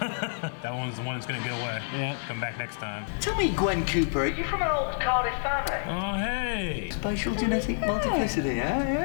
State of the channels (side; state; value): right; silent; digital silence